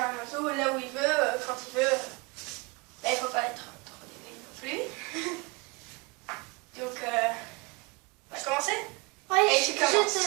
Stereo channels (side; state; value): left; quieter; 27.3 dB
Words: oiseau là où il veut, quand il veut. Là, il ne faut pas être trop débile non plus. Donc, on va commencer? Oui, et tu commences.